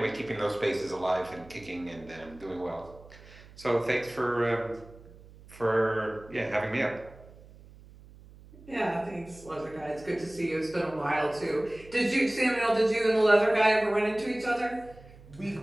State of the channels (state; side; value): noise; right; hum, 21 dB below the sound